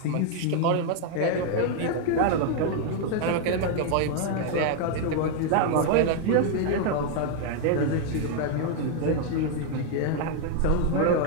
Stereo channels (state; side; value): different; both; correlation 0.00